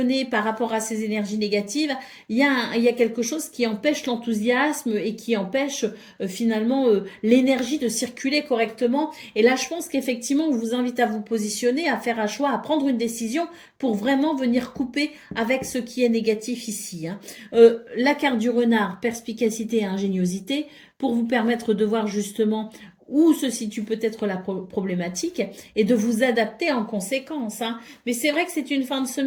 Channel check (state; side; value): identical; both; correlation 1.00